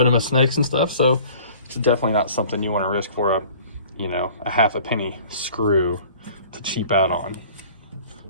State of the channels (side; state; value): both; inverted; correlation -0.47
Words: and stuff, so it's definitely not something you want to risk for a 1/2 penny screw to cheap out on,